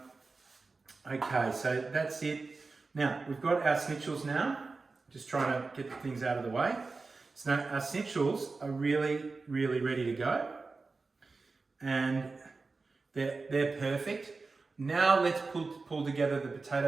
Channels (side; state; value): left; quieter; 4.0 dB